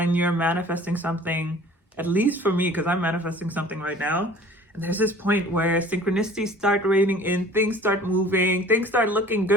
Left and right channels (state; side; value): normal; both; correlation 0.48